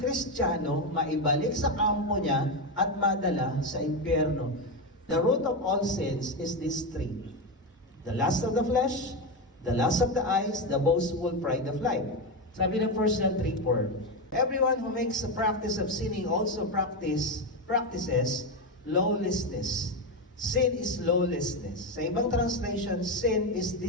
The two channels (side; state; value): both; normal; correlation 0.12